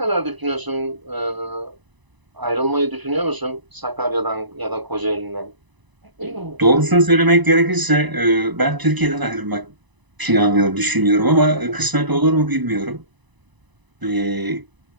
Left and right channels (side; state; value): left; late; 1.0 ms